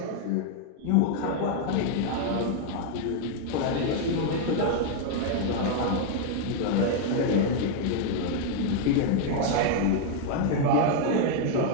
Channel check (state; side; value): different; both; correlation 0.00